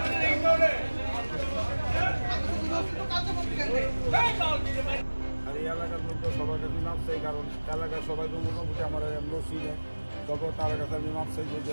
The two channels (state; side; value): inverted; both; correlation -1.00